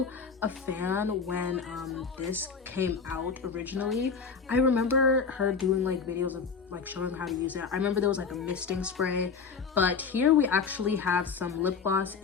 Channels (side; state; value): right; quieter; 5.5 dB